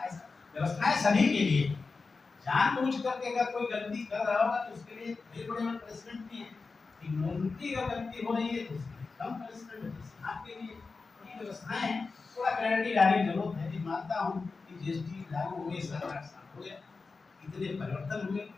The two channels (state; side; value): quieter; right; 4.3 dB